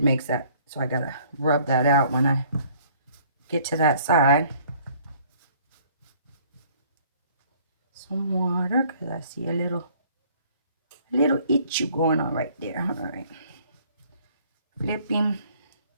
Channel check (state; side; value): inverted; both; correlation -0.58